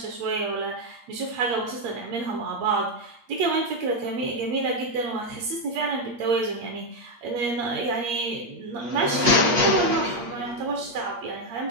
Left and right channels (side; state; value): left; late; 8.5 ms